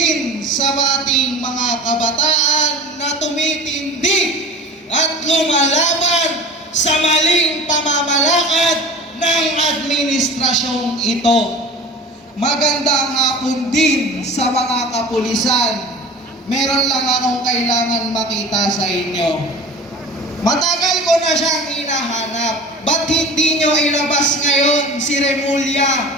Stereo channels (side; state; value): both; normal; correlation 0.38